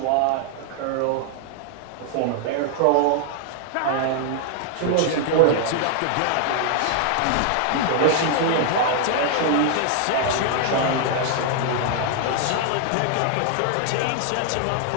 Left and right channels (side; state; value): both; different; correlation 0.00